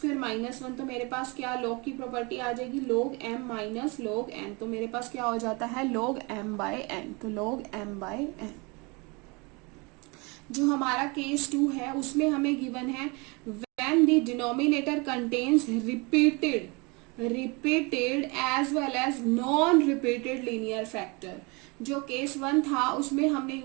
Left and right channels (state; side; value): quieter; left; 28.5 dB